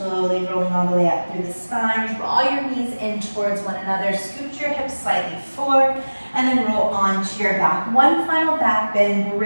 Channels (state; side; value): inverted; both; correlation -1.00